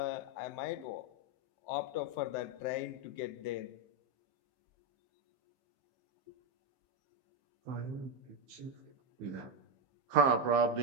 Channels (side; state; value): left; late; 15 ms